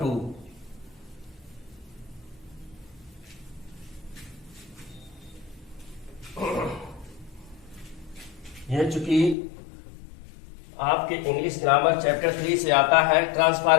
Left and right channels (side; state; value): right; drops out; at 9.3 s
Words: यह चूंकि आपके इंग्लिश ग्रामर चैप्टर 3 से आता है